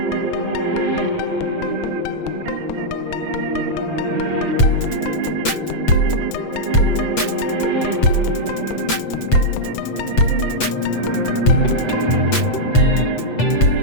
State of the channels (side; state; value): right; late; 8.0 ms